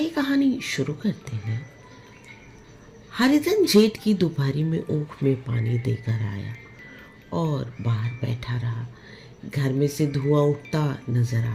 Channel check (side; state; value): both; identical; correlation 1.00